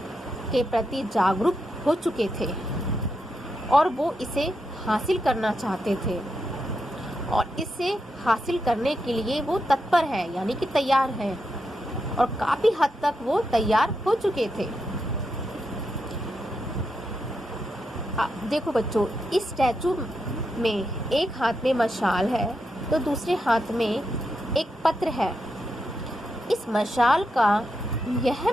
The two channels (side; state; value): both; normal; correlation 0.84